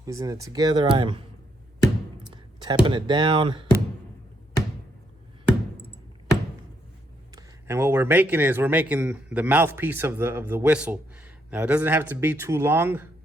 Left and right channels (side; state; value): both; normal; correlation 0.76